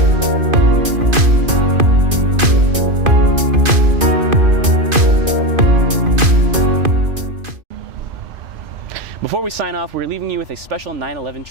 we sign off, we're leaving you with a special 9/11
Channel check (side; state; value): left; late; 2.5 ms